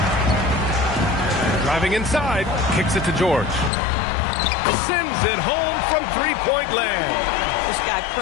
Driving inside, kicks it to George. Sends it home from three-point land. This guy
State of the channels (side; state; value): right; drops out; at 3.7 s